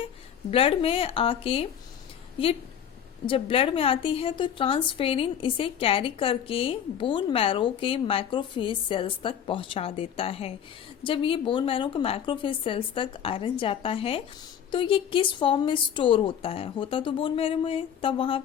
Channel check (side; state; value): right; quieter; 8.8 dB